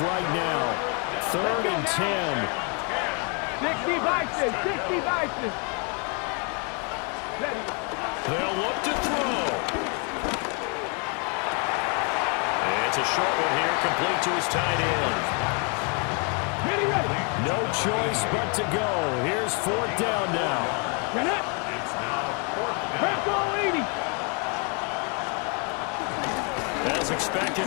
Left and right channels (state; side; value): quieter; right; 36.1 dB